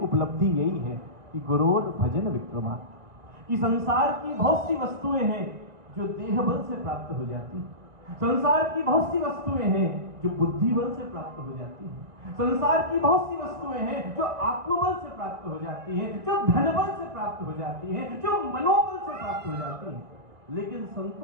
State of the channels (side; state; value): left; late; 2.0 ms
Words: उपलब्धि यही है कि गुरोर भजन विक्रमा, कि संसार की बहुत सी वस्तुएं हैं जो देह बल से प्राप्त हो जाती हैं, संसार की बहुत सी वस्तुएं हैं जो बुद्धि बल से प्राप्त हो जाती हैं, संसार की बहुत सी वस्तुएं हैं जो आत्मबल से प्राप्त हो जाती हैं, जो धन बल से प्राप्त हो जाती हैं, जो मनोबल से प्राप्त हो जाती हैं। लेकिन